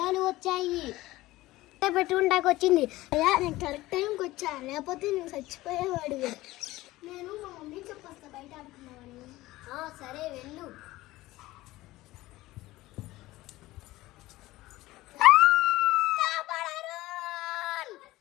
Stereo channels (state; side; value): quieter; right; 17.9 dB